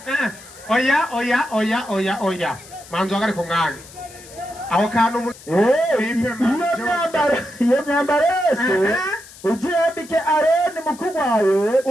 oya manzo agari ku mwanya aho kantu iyo myambaro yose uzuyambike Aroni mukuru wawe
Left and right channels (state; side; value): noise; left; hiss, 20 dB below the sound